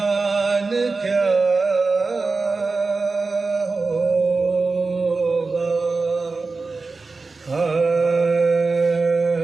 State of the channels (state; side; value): quieter; left; 4.0 dB